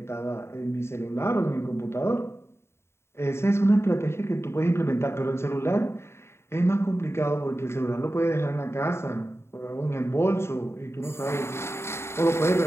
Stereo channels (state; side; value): late; right; 0.12 ms